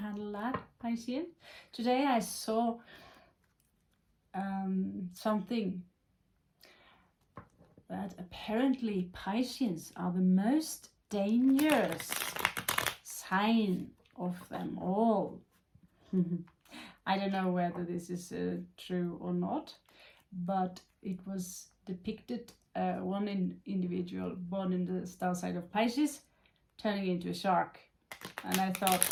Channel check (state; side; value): identical; both; correlation 1.00